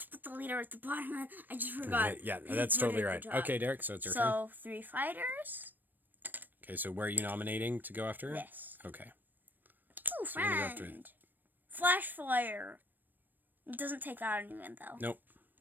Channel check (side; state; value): left; late; 0.091 ms